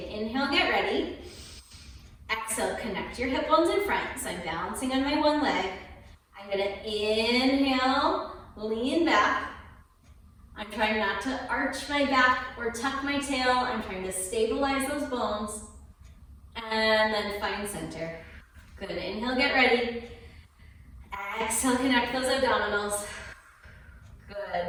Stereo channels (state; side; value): identical; both; correlation 1.00